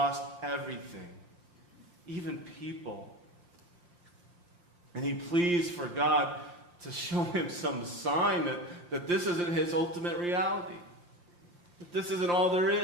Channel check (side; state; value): left; late; 5.7 ms